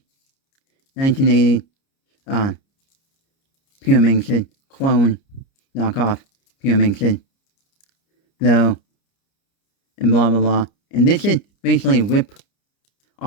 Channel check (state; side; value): late; right; 30 ms